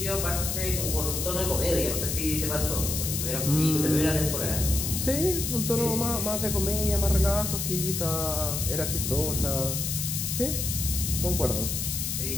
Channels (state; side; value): noise; left; hiss, 2 dB below the sound